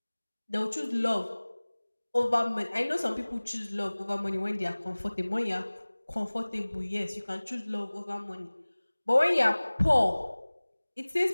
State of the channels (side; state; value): both; inverted; correlation -1.00